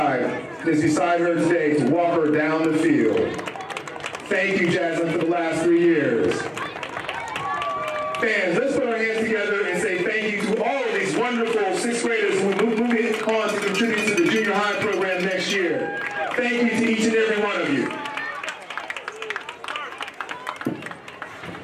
and is beside her today to walk her down the field. Thank you, Jaslyn, for the last 3 years. Fans, let's put our hands together and say thank you to all of these wonderful 6th graders who will move on to contribute to the junior high program next year. Thank you to each and every one of you.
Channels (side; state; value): both; identical; correlation 1.00